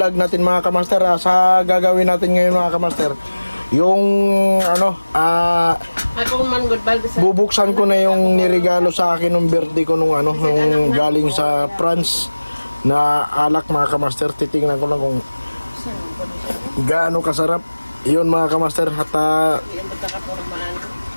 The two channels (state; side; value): inverted; both; correlation -1.00